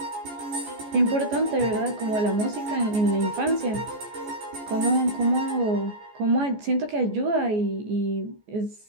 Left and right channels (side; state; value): left; late; 14 ms